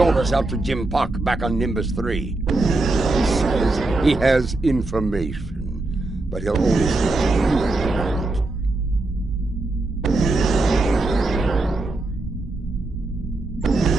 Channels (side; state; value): left; quieter; 3.0 dB